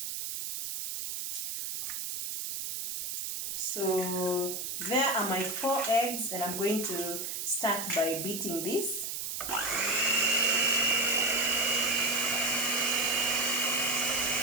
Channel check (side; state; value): right; noise; hiss, 4 dB below the sound